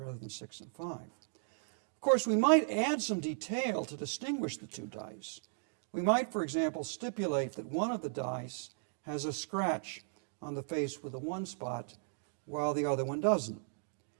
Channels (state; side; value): silent; left; digital silence